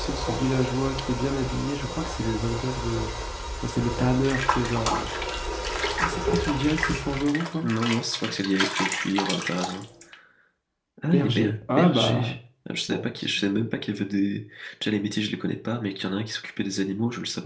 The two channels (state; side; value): identical; both; correlation 1.00